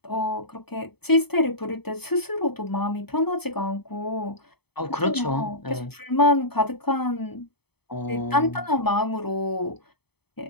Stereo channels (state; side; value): late; right; 0.97 ms